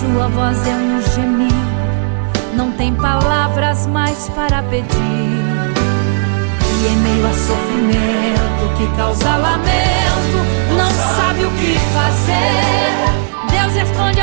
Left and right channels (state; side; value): silent; left; digital silence